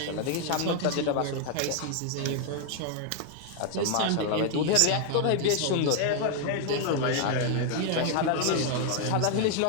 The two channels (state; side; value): different; both; correlation 0.00